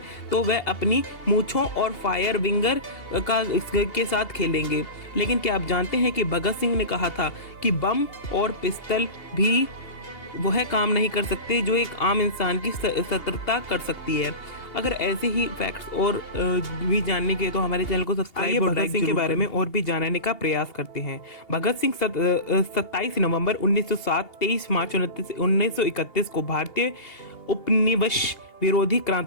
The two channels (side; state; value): right; late; 2.8 ms